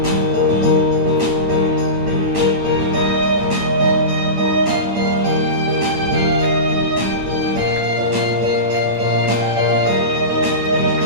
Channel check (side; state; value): left; late; 8.8 ms